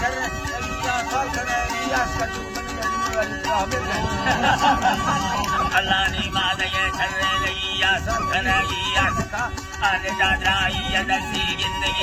घर या साल करे रियाज का तू अल्लाह ने माद ये करे रिया सब करे रिया का आने दादा ये नसी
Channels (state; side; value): identical; both; correlation 1.00